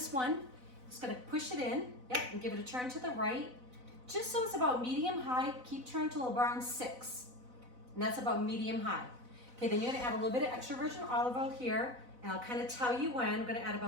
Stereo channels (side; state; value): left; late; 4.0 ms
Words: one. Just gonna push it in, yep, and give it a turn to the right. Just so it's about medium high, keep turning till around 6. And that's about medium high. Okay, then you're gonna add a little bit of extra virgin olive oil here, and I'll kind of tell you when. I'm gonna add